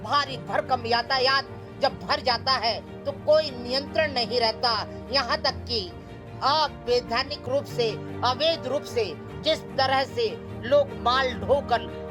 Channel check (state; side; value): identical; both; correlation 1.00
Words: भारी भरकम यातायात जब भर जाता है तो कोई नियंत्रण नहीं रहता। यहाँ तक कि अवैधानिक रूप से, अवैध रूप से जिस तरह से लोग माल ढोकर